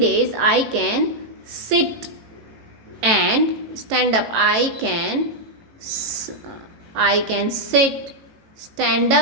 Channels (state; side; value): late; left; 18 ms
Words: sit and stand up. I can sit, stand